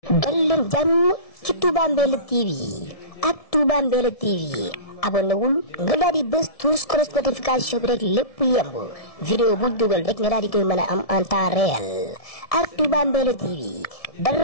dal leen jàmm ci Touba Mbella TV ak Touba Mbella TV abonné wul nga daal di bës tous notification bi rek lépp yemb vidéo bu dugal rek nga daal di koy mën a am en temps réel ak Touba Mbella TV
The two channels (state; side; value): late; right; 1.7 ms